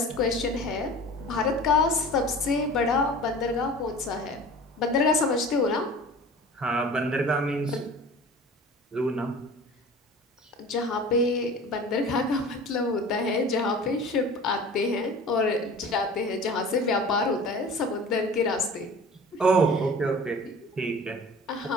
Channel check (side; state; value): both; normal; correlation 0.40